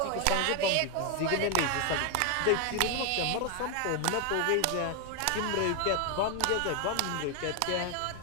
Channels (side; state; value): both; different; correlation 0.01